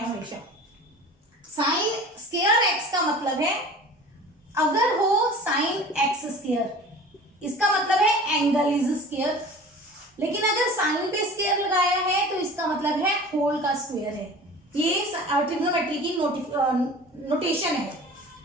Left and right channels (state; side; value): normal; both; correlation 0.40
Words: हमेशा। साइन स्क्वायर x का मतलब है अगर हो साइन x स्क्वायर, इसका मतलब है एंगल इज स्क्वायर, लेकिन अगर साइन पे स्क्वायर लगाया है तो इसका मतलब है होल का स्क्वायर है। ये ट्रिग्नोमेट्री की नोटेशन है।